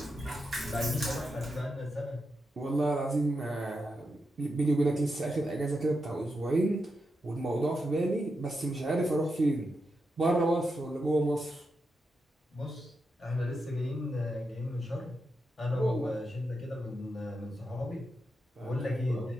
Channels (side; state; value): both; normal; correlation 0.86